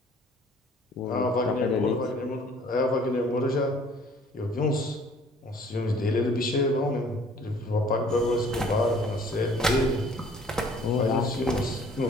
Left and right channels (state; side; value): normal; both; correlation 0.55